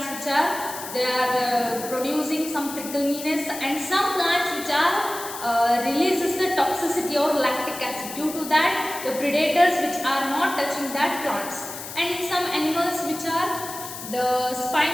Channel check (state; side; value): noise; left; hiss, 10 dB below the sound